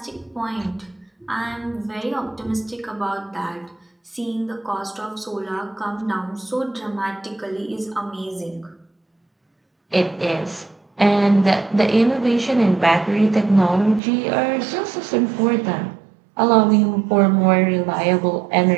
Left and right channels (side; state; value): left; drops out; at 14.0 s